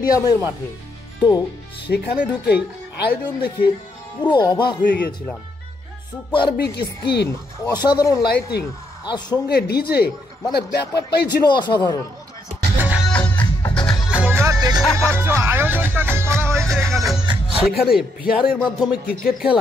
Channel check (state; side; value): normal; both; correlation 0.76